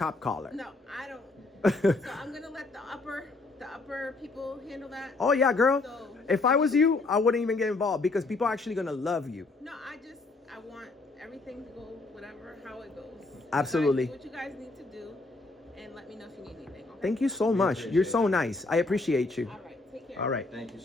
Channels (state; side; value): quieter; right; 3.4 dB